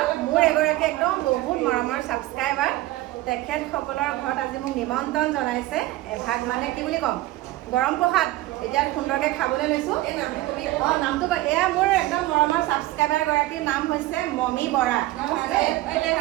মোৰ এগৰাকী একদম বহুত মৰমৰ ছাবস্ক্ৰাইবাৰ, তেখেতসকলৰ ঘৰত আজি মোক নিমন্ত্ৰণ জনাইছে। এভাগ মানে কি বুলি ক'ম, গৰম প্ৰসাদ এতিয়া সুন্দৰকৈ খাবলৈ লৈছোঁ। নামটো এয়া মোৰ একদম মৰমৰ ছাবস্ক্ৰাইবাৰ গৰাকীৰ নাম হৈছে মমী বৰা।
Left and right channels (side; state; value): left; quieter; 17.3 dB